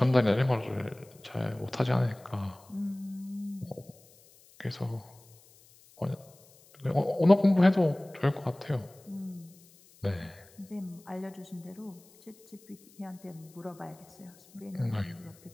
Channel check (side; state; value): left; noise; hiss, 26 dB below the sound